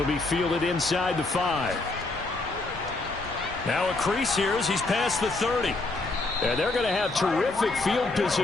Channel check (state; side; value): quieter; right; 3.2 dB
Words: be fielded inside the 5. Now a crease here as he's past the 30. And they're going to have terrific field